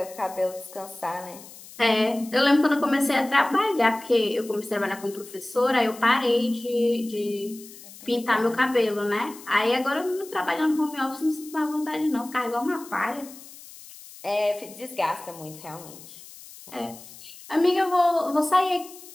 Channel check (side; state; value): left; noise; hiss, 18 dB below the sound